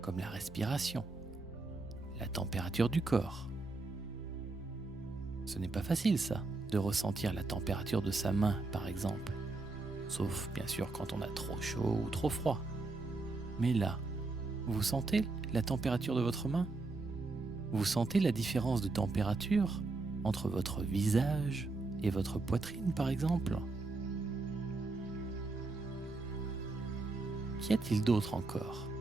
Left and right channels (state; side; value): quieter; left; 3.4 dB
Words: comme la respiration, la température du corps. Ce n'est pas facile ça, de ressentir la température de sa main par exemple, sauf bien sûr quand on a trop chaud ou trop froid. Mais là, vous sentez la température de votre main? Vous sentez la différence de température entre votre visage et votre poitrine par exemple? Qu'y a-t-il d'autre encore?